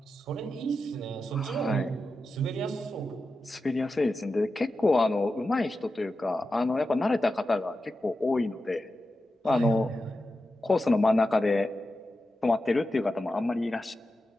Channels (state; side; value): normal; both; correlation 0.91